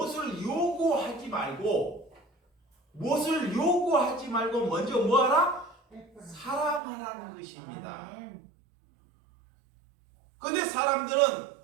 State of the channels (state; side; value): drops out; left; at 6.8 s